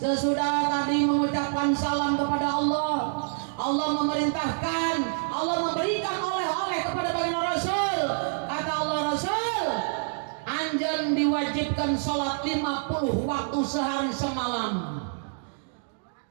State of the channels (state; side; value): silent; left; digital silence